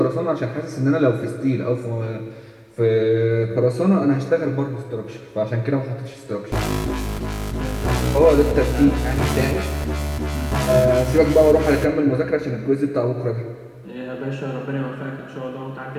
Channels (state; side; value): identical; both; correlation 1.00